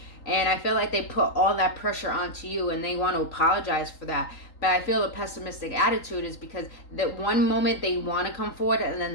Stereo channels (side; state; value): right; late; 3.8 ms